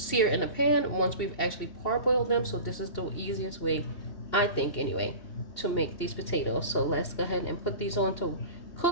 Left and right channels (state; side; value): late; right; 2.8 ms